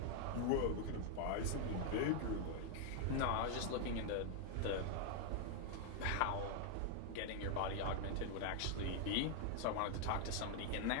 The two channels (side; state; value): both; different; correlation 0.00